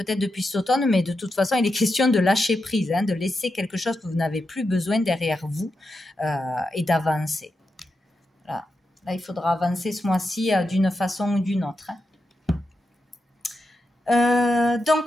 depuis cet automne, mais de toute façon, il est question de lâcher prise, hein, de laisser quelque chose que vous n'avez plus besoin derrière vous et d'avancer. Là, il faudra avancer ce mois-ci d'une façon ou d'une autre. Hein.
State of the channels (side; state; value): both; normal; correlation 0.88